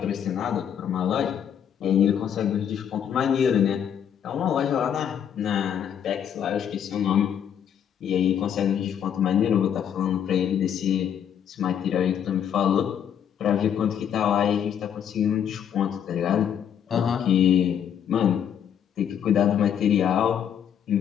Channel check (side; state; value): right; quieter; 8.9 dB